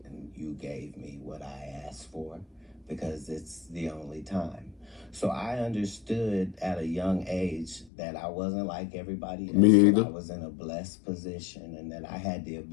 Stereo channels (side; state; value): right; drops out; at 7.9 s